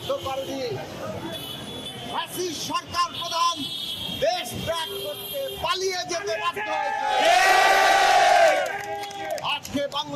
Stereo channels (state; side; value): identical; both; correlation 1.00